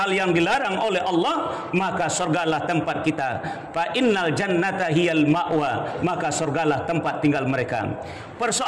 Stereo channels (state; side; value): identical; both; correlation 1.00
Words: yang dilarang oleh Allah, maka surgalah tempat kita. Fa innal jannata hiyal ma'wa, maka surgalah tempat tinggal mereka.